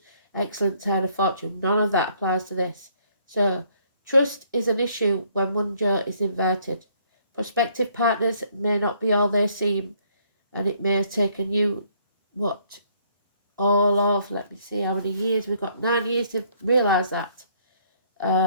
excellent turn of fortune. None of that applies to this. So trust is an issue when one Joe is inverted. Prospective partners may not be all they seem, and it may have taken you all of, let me see how many years, we've got 9 years to realise that.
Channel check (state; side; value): inverted; both; correlation -0.64